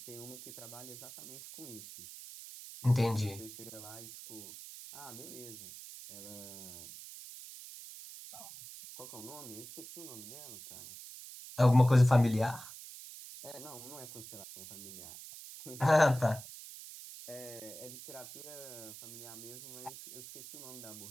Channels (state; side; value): noise; right; hiss, 13 dB below the sound